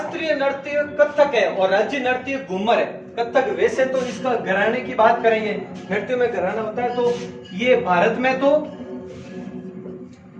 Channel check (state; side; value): identical; both; correlation 1.00